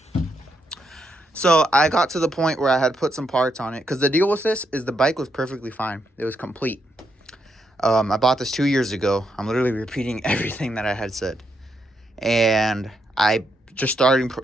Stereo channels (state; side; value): normal; both; correlation 0.79